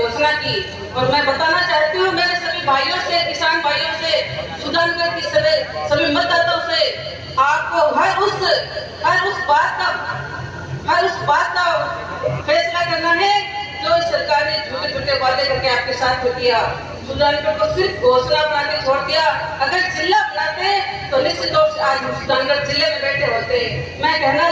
की। और मैं बताना चाहती हूँ मेरे सभी भाइयों से, किसान भाइयों से, सुजानगढ़ की सभी मतदाताओं से, आपको हर उस बात का फैसला करना है जो इस सरकार ने छोटे छोटे वादे करके आपके साथ में किया। सुजानगढ़ को सिर्फ घोषणा बना के छोड़ दिया। अगर जिला बनाते तो निश्चित तौर से आज हम सुजानगढ़ जिले में बैठे होते। मैं कहना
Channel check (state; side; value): identical; both; correlation 1.00